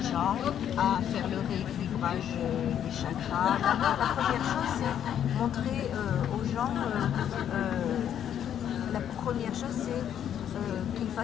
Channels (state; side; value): quieter; right; 9.7 dB